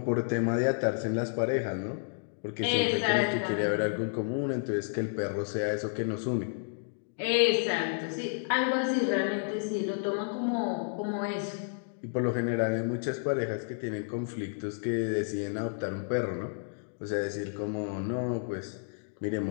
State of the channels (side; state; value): right; silent; digital silence